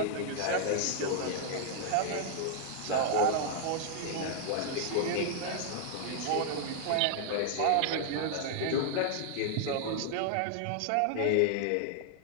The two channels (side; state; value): both; different; correlation 0.00